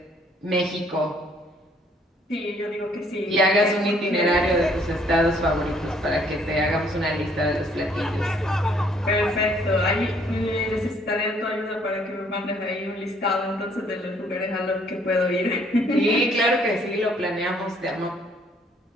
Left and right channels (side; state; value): both; normal; correlation 0.63